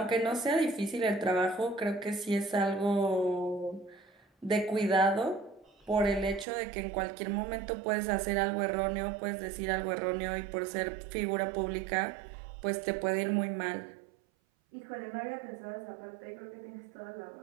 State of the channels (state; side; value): drops out; left; at 6.5 s